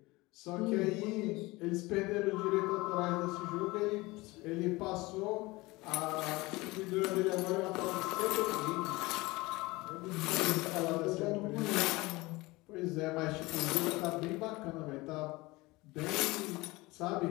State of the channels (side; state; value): right; quieter; 21.9 dB